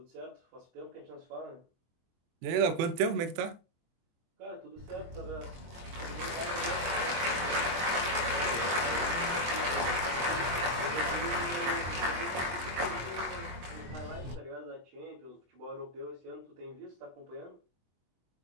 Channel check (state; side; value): late; left; 23 ms